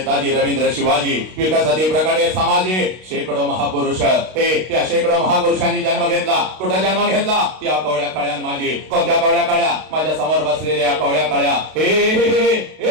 रवींद्र शिवाजी विकासाची प्रकारे समाजी शेकडो महापुरुष त्या शेकडो महापुरुषांनी जन्म घेतला. कुठे जन्म घेतला? या कवळ्या कळ्यान माझी. कोणत्या कवळ्या कळ्या? माझ्या समोर बसलेल्या कवळ्या कळ्या.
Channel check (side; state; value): left; late; 32 ms